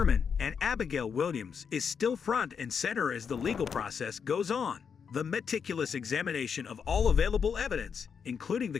and Abigail Williams is still front and center as the legal process goes on. The meticulous examination of all available evidence, including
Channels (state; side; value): quieter; right; 6.6 dB